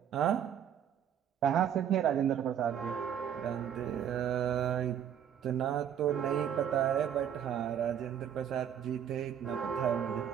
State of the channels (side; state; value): left; quieter; 9.2 dB